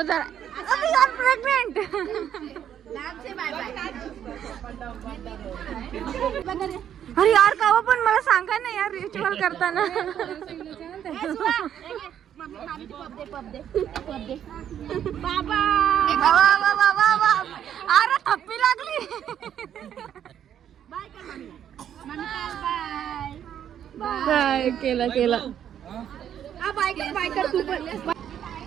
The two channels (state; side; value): quieter; left; 9.7 dB